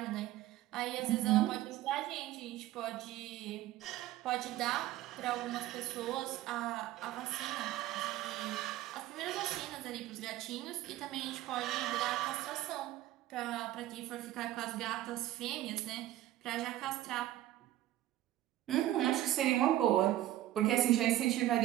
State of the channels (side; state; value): left; quieter; 14.5 dB